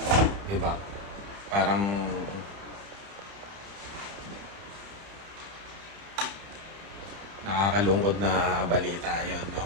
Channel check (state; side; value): late; left; 30 ms